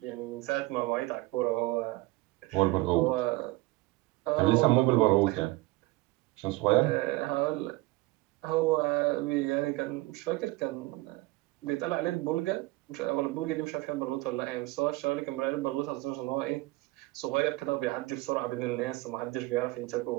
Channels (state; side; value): quieter; left; 20.3 dB